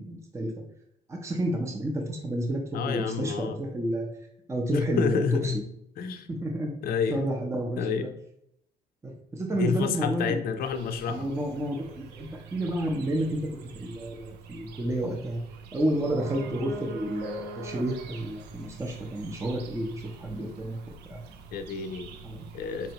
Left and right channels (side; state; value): both; normal; correlation 0.68